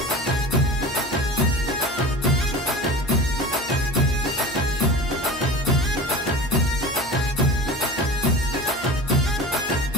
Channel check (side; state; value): both; normal; correlation 0.35